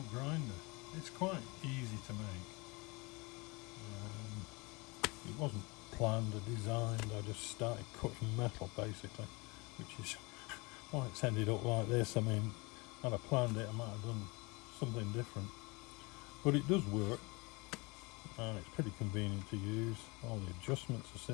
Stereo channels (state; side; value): quieter; right; 26.4 dB